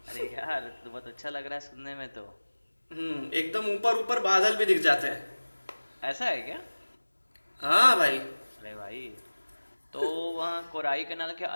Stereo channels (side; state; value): both; inverted; correlation -1.00